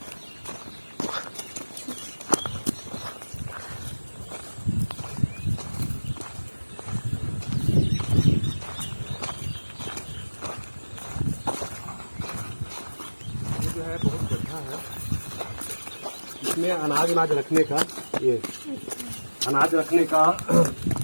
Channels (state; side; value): inverted; both; correlation -1.00